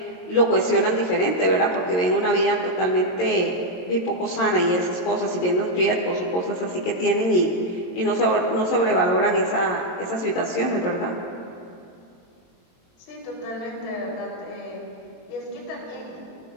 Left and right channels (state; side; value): late; right; 22 ms